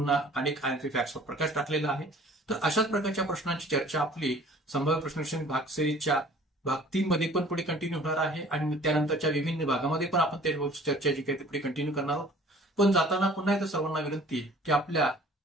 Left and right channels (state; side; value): normal; both; correlation 0.50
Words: अनेक आयएमपी फॅक्ट्सवर प्रकाश टाकलेला आहे. तर अशाच प्रकारच्या प्रश्नांची चर्चा आपली संभाव्य प्रश्नविश्लेषण भाग सिरीजच्या भाग 3 मध्ये पण पुढे कंटिन्यू होणार आहे आणि त्यानंतरच्या विभिन्न भागामध्ये पण आपण त्या चर्चा जी काही पुढे कंटिन्यू करणार आहोत. पण जाताना पुन्हा एकदा सर्वांना विनंती की आपल्या